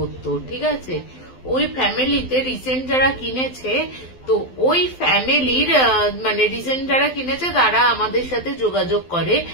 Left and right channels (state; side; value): late; right; 12 ms